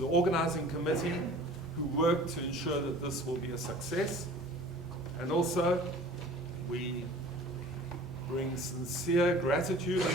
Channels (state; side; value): normal; both; correlation 0.45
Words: organizing committee who worked to ensure that this will be a success. And also, we bring sincere gratitude and